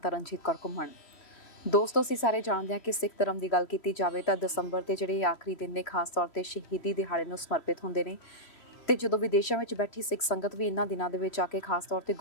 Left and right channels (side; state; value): right; late; 3.1 ms